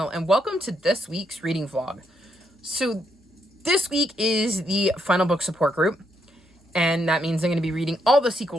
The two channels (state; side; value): normal; both; correlation 0.77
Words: and welcome to this week's reading vlog. So this week is the final book support group, and that means I'm going to be reading all the